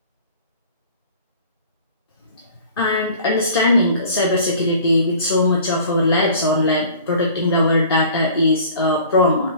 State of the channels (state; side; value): inverted; both; correlation -0.47